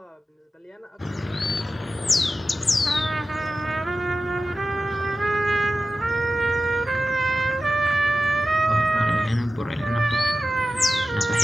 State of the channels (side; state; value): both; normal; correlation 0.93